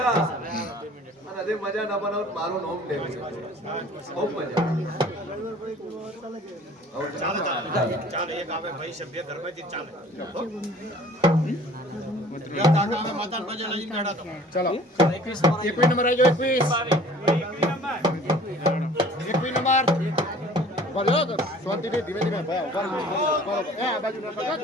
અને આજે મજા ના બનાવ તો મારું નામ દેવ છે ખૂબ મજા. ચાલે ચાલો. ચાલે એક આવે ભાઈ સભ્ય ઘરમાંથી ચાલે યા કાકા હવે માતાને પગે લાગી બેઠા તો ચલો 21 નંબર આવી જાઓ 21 નંબર બોલો તો શાંતિથી ધીમે ધીમે ભાઈ ઉભા રહો. એ આ બાજુ ના કરજો.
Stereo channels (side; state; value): both; normal; correlation 0.50